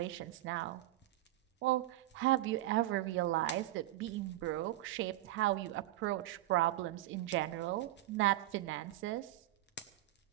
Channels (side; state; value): left; quieter; 15.6 dB